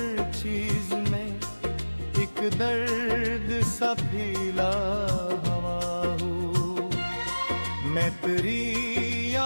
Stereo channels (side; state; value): both; inverted; correlation -1.00